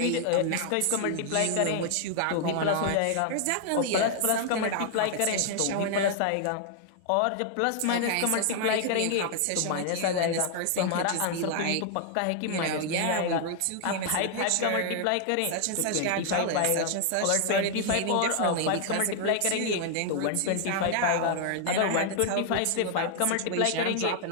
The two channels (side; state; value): both; different; correlation 0.00